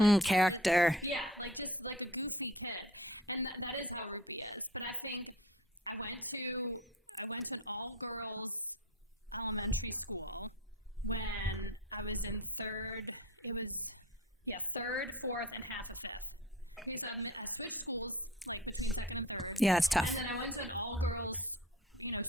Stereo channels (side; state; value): both; normal; correlation 0.40